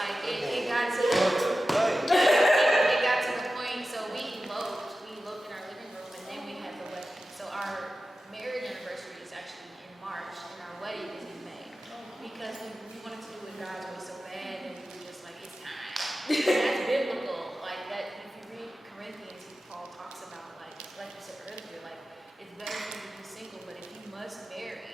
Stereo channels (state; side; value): normal; both; correlation 0.94